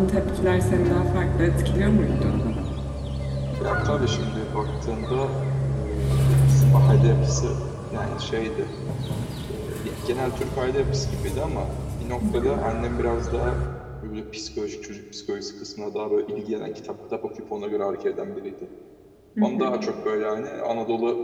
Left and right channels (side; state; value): both; identical; correlation 1.00